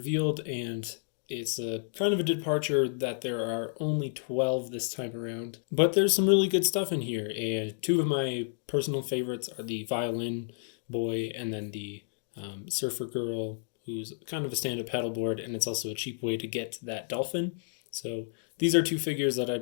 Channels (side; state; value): right; silent; digital silence